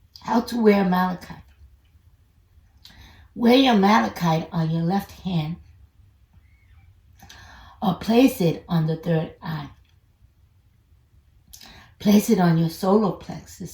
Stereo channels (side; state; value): both; identical; correlation 1.00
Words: How to wear malachite. Wear your malachite on your left hand or place it on the third eye. Place it on your solar